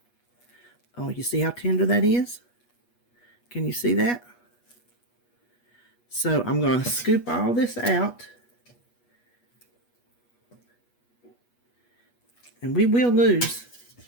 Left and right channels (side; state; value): right; late; 8.3 ms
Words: Oh, you see how tender that is? Can you see that? So I'm going to scoop all this out. And we will lose